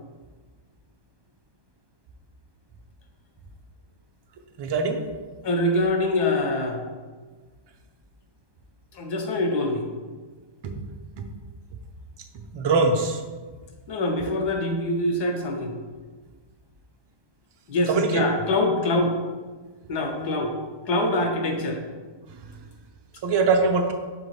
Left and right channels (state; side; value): late; left; 1.2 ms